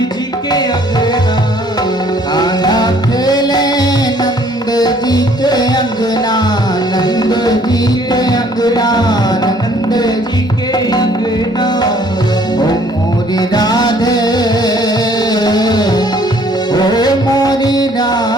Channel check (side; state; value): both; normal; correlation 0.59